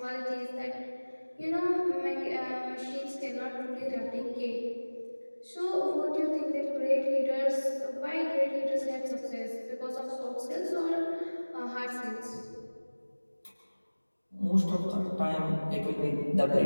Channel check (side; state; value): both; inverted; correlation -1.00